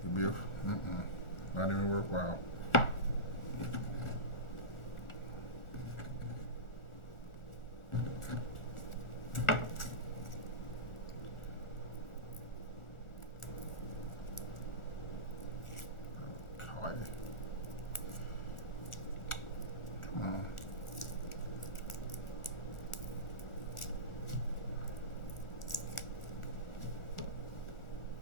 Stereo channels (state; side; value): late; right; 1.4 ms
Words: it'd be not even worthwhile.